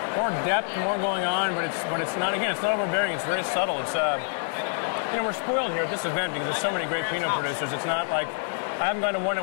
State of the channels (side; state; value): right; silent; 60 dB below the other